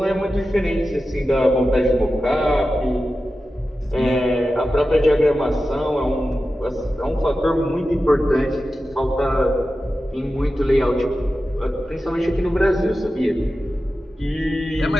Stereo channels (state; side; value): normal; both; correlation 0.93